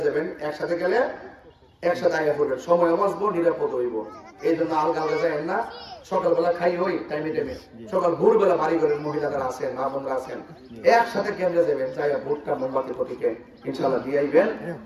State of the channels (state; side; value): identical; both; correlation 1.00